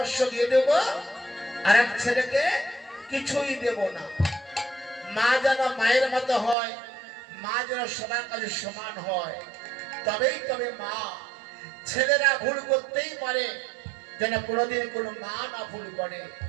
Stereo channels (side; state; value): left; drops out; at 6.6 s